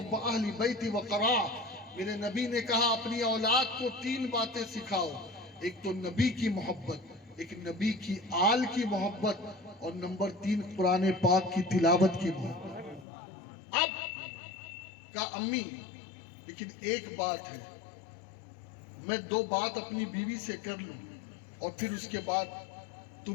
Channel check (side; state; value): right; drops out; at 13.1 s